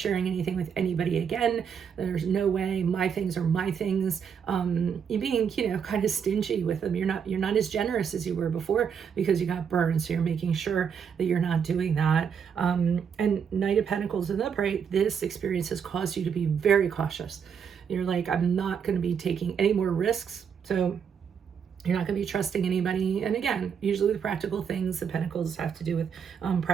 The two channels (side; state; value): left; quieter; 7.2 dB